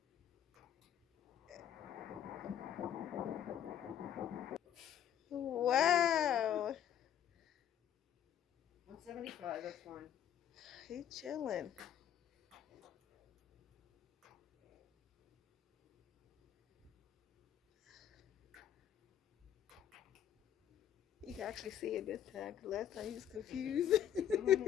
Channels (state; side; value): quieter; right; 10.0 dB